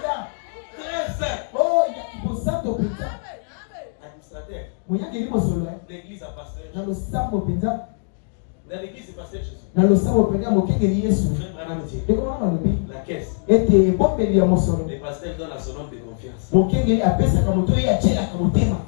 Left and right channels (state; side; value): silent; right; digital silence